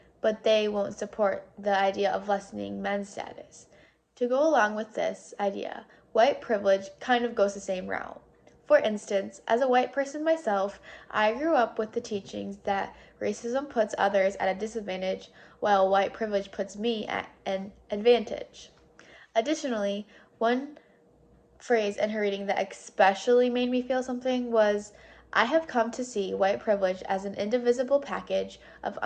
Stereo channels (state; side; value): identical; both; correlation 1.00